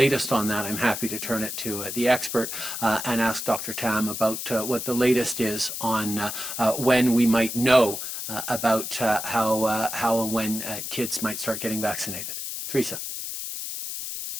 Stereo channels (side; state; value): left; noise; hiss, 6 dB below the sound